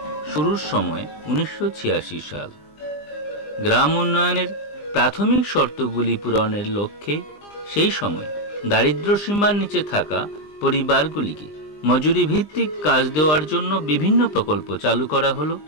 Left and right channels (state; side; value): late; right; 20 ms